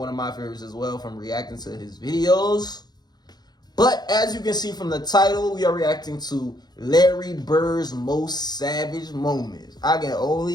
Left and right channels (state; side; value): late; right; 0.20 ms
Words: of my favorites as well from reacting to his videos. But as you can see from the title, we are reacting to Larry Bird's most savage moments. I can